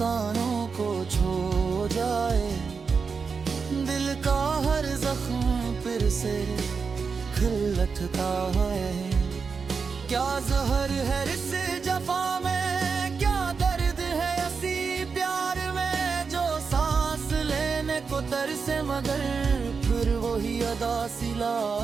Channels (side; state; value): left; quieter; 5.3 dB